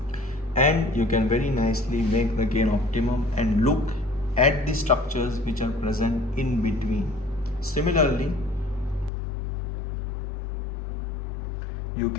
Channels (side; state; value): right; drops out; at 9.1 s